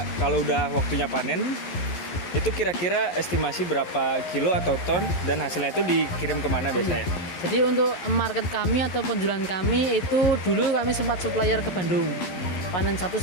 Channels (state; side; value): late; right; 12 ms